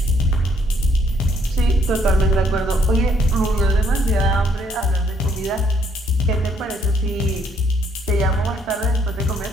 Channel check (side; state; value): both; normal; correlation 0.68